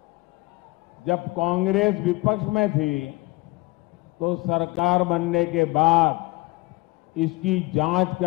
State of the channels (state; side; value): quieter; right; 22.8 dB